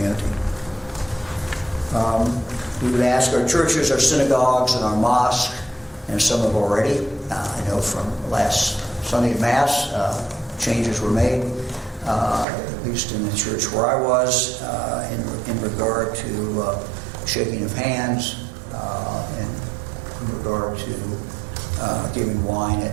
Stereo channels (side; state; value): left; drops out; at 12.5 s